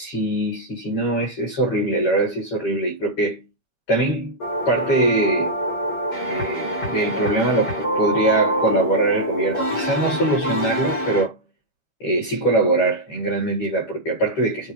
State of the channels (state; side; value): late; right; 12 ms